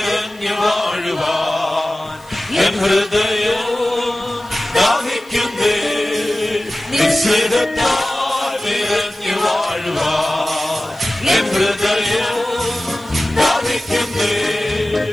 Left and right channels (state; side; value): noise; left; hiss, 28 dB below the sound